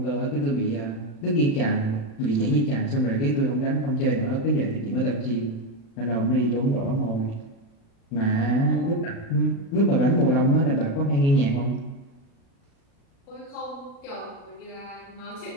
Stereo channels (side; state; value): right; late; 36 ms